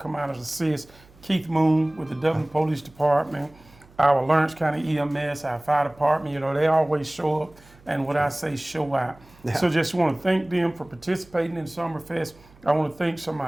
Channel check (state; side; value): noise; right; hum, 26 dB below the sound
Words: out and assist. Keith Moon with the Dublin Police Department. Our Lawrence County EMS, our fire department, you know, they always show up, and what I say, show out. Yeah. So just want to thank them for participating in Summerfest. I want to thank some of